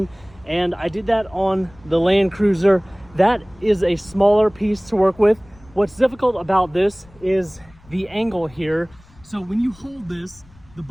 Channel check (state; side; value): noise; left; rumble, 26 dB below the sound